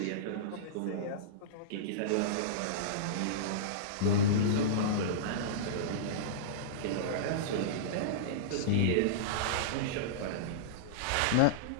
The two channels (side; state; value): both; different; correlation -0.04